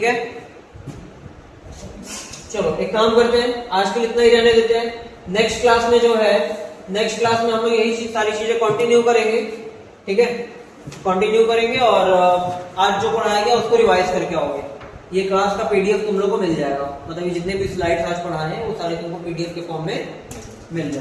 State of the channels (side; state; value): both; identical; correlation 1.00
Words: है, चलो एक काम करते हैं, आज के लिए इतना ही रहने देते हैं। नेक्स्ट क्लास में जो है, नेक्स्ट क्लास में हम लोग यही सारी चीजें कंटिन्यू करेंगे, ठीक है, कंटिन्यू करेंगे और आज जो पढ़ाया गया उसको रिवाइज करके आओगे। ये क्लास का पीडीएफ तुम लोग को मिल जाएगा, मतलब ये जितने भी स्लाइड्स आज पढ़ाए हैं वो सारे तुमको पीडीएफ के फॉर्म में मिल